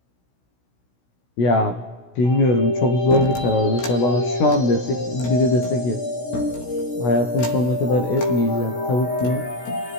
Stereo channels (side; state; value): right; late; 16 ms